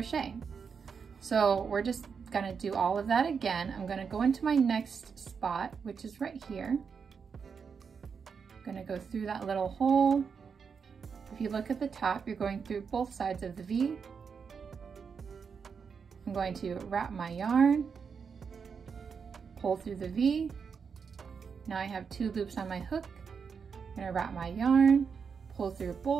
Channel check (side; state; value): left; quieter; 6.1 dB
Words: So we're just going to do all of that again. I'm going to go into my next spot, which is right here. I'm going to go through that little hole. If you look at the top, you're going through both sides of the V. I'm going to wrap my yarn, pull through the V. Now I have 2 loops on my hook. I'm going to wrap my yarn, pull through